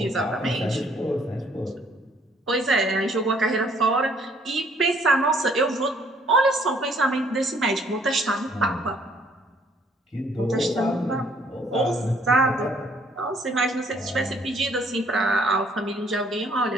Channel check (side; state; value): both; normal; correlation 0.63